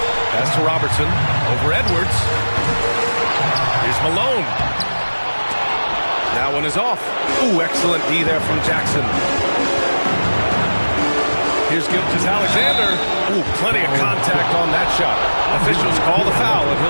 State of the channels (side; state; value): both; inverted; correlation -1.00